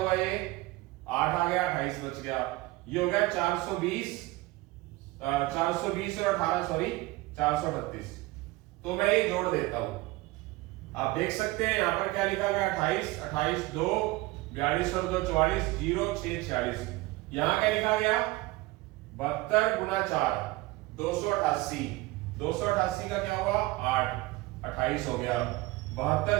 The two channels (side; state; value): left; quieter; 20.2 dB